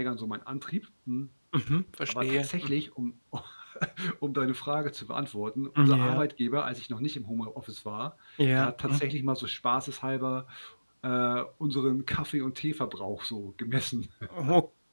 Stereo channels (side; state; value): both; inverted; correlation -1.00